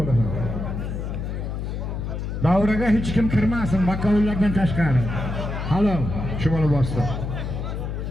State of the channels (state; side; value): noise; left; hum, 4 dB below the sound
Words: olasan. Davraga hech kim kirmasin, makovullardan tashqari. Halol, shu bola bosdi.